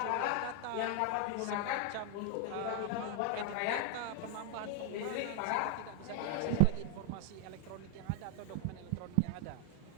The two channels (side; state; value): both; different; correlation 0.00